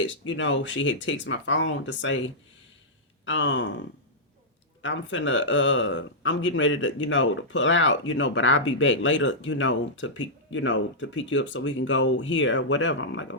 she had texted my phone to say, I'm getting ready to, to pull out, but I'll be back later, to pick you up so we can go here or whatever. I'm like,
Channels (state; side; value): normal; both; correlation -0.10